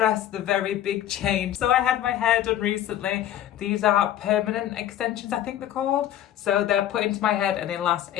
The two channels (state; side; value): quieter; right; 11.7 dB